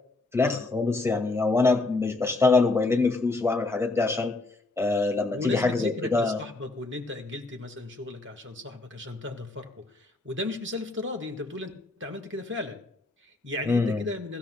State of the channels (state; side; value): quieter; right; 3.2 dB